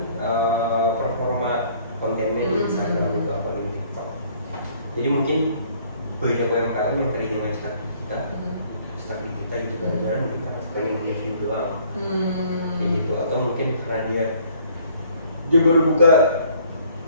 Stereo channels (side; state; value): both; inverted; correlation -0.59